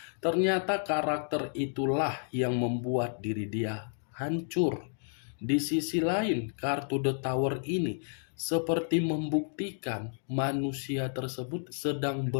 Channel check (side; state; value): right; silent; digital silence